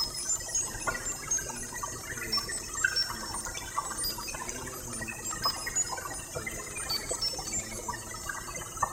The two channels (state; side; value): identical; both; correlation 1.00